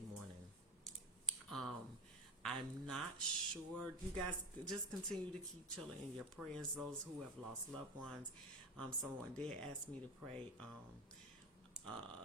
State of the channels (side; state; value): both; normal; correlation 0.22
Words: I'm not sure. You guys just continue to keep chilling in your prayers. Those who have lost loved ones. Someone did ask me to pray.